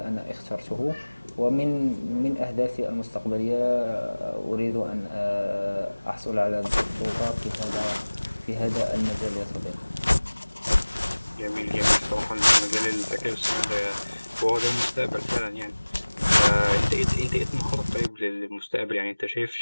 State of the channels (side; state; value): both; inverted; correlation -1.00